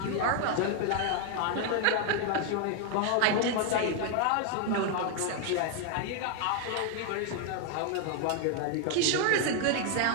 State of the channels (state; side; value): different; both; correlation 0.00